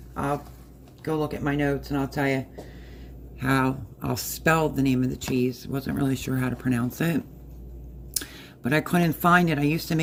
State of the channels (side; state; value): both; identical; correlation 1.00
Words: I'll go look at my notes and I'll tell you how I'll spell the name of the cheese. Wasn't really sure how to pronounce it, but I couldn't find it. I used to